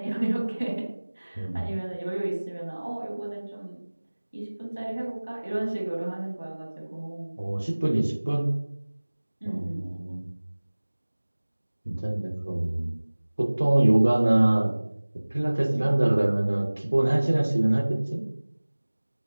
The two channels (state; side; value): inverted; both; correlation -1.00